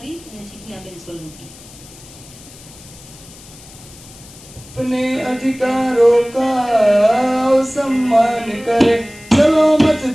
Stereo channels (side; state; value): left; noise; hiss, 20 dB below the sound